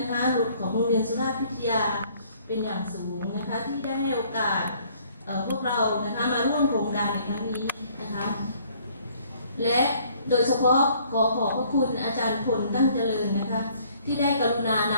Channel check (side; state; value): both; inverted; correlation -0.60